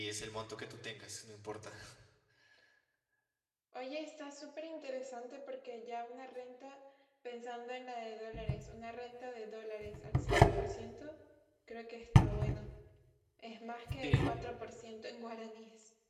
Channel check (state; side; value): identical; both; correlation 1.00